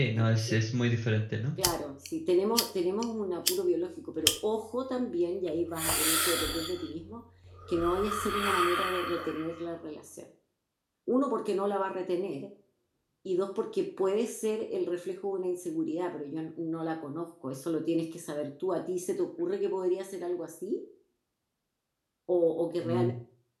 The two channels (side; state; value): both; identical; correlation 1.00